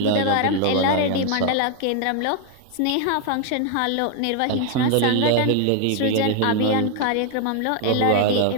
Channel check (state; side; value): different; both; correlation 0.00